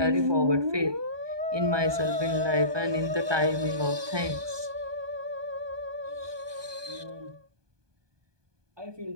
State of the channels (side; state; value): left; late; 1.2 ms